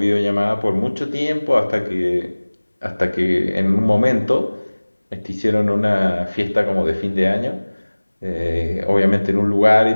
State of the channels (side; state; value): both; inverted; correlation -1.00